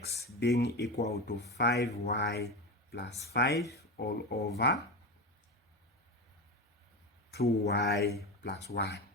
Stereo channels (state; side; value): normal; both; correlation 0.20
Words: being equal to 5y plus 5 all over 2y plus 1.